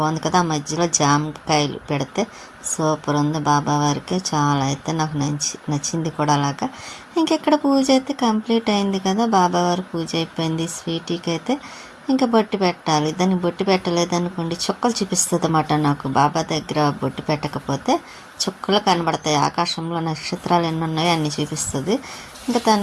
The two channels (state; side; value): identical; both; correlation 1.00